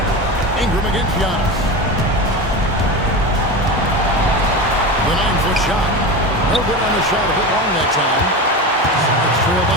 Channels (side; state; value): both; normal; correlation 0.25